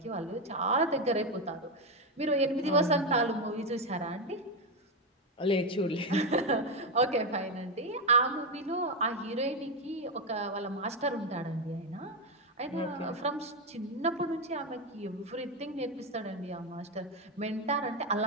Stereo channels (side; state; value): both; normal; correlation 0.08